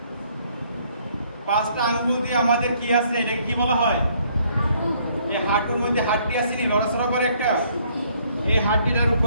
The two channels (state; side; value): inverted; both; correlation -0.65